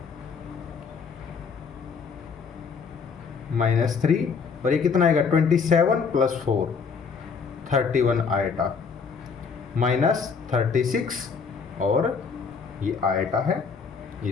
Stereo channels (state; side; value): quieter; right; 5.6 dB